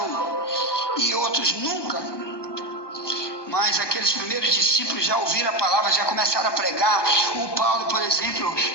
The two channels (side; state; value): right; late; 1.2 ms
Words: e outros nunca. Mas aqueles primeiros discípulos já ouviram a palavra, já começaram a pregar. O Paulo, por exemplo,